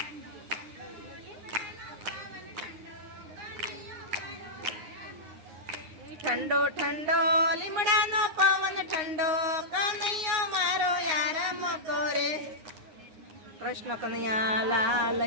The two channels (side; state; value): left; late; 9.7 ms